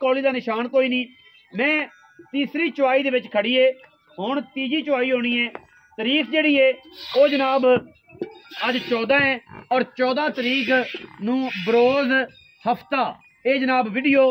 का निशान कोई नहीं। मैं तीसरी चुआई दे विच खड़ी है हुण तीजी चुआई होनी है। तारीख जिहड़ी है वो जनाब अज 14 है और 14 तरीक नूं बरोज़ हफ्ता ये जनाब वीडियो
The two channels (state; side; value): identical; both; correlation 1.00